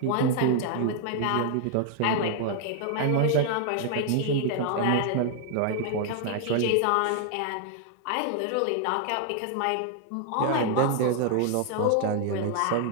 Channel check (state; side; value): different; both; correlation 0.00